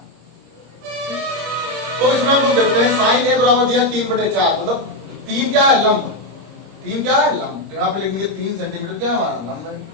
तो इसमें हम लोग देखते हैं साइन ए बराबर दिया 3/4, मतलब 3 क्या है, लंब। 3 क्या है, लंब। तो यहाँ पे लिखेंगे 3 सेंटीमीटर क्या है हमारा, लंब है।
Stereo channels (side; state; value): left; late; 26 ms